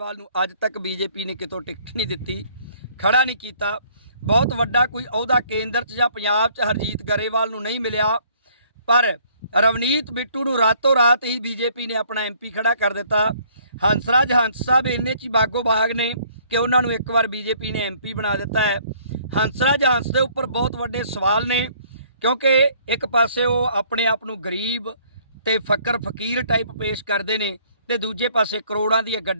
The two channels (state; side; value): inverted; both; correlation -0.61